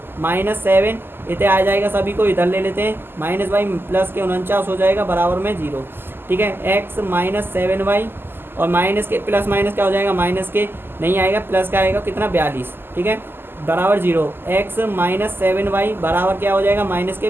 माइनस 7 इधर आ जाएगा, सभी को इधर ले लेते हैं, माइनस वाई प्लस के 49 हो जाएगा बराबर में 0। ठीक है, x माइनस 7y, और माइनस के प्लस माइनस क्या हो जाएगा, माइनस के नहीं आएगा, प्लस का आएगा कितना 42। ठीक है, बराबर 0। x माइनस 7y बराबर क्या हो जाएगा, माइनस के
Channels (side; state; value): left; late; 0.10 ms